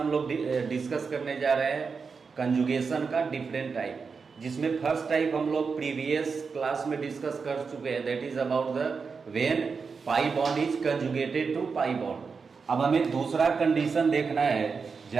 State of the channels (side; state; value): left; quieter; 5.2 dB